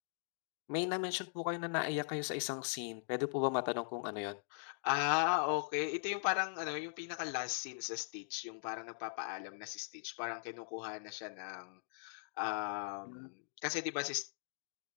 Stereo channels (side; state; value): right; silent; digital silence